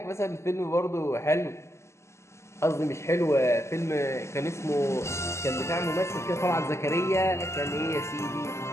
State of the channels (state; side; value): late; right; 0.13 ms